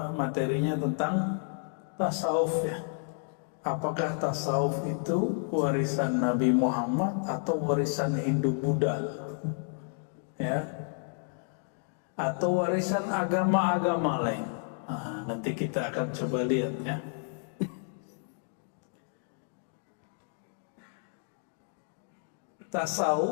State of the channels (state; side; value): silent; right; 57 dB below the other